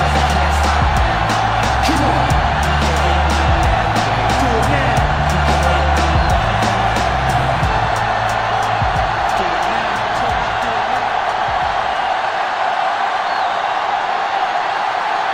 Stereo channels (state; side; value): identical; both; correlation 1.00